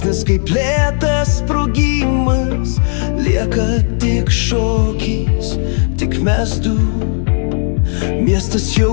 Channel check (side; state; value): right; silent; digital silence